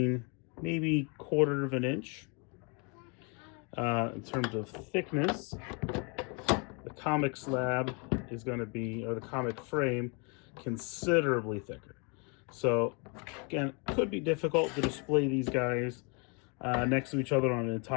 maybe 1/4 of an inch. In terms of thickness, the Komiq slab is going to be, or the Komiq frame, considerably thicker. So again, it could be difficult to display these guys next to each other on an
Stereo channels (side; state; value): right; quieter; 33.6 dB